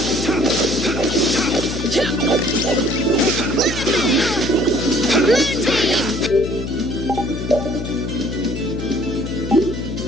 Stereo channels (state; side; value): noise; left; hum, 7 dB below the sound